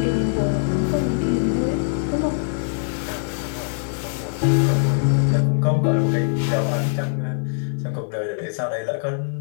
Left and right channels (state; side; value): silent; right; digital silence